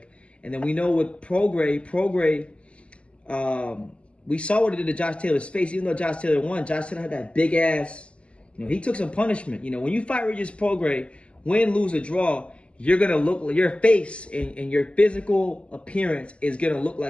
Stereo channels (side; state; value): right; late; 0.056 ms